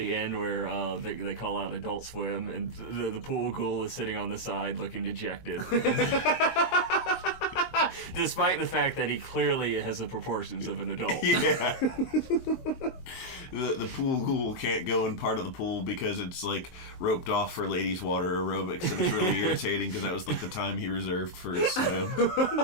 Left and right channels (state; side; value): late; right; 23 ms